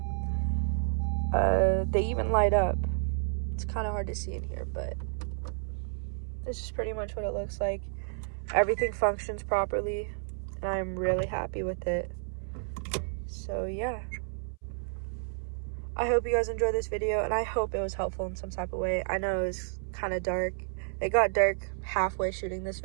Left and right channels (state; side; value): silent; left; 57 dB below the other